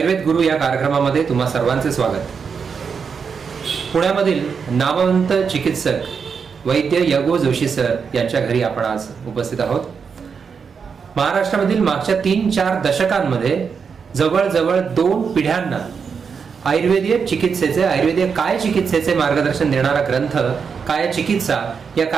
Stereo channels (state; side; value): quieter; left; 6.1 dB